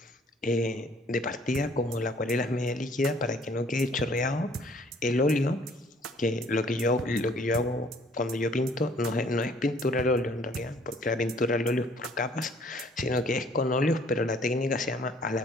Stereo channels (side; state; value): both; normal; correlation 0.59